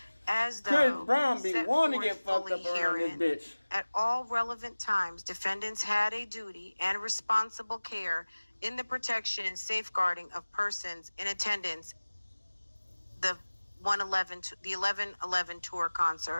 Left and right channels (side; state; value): both; inverted; correlation -1.00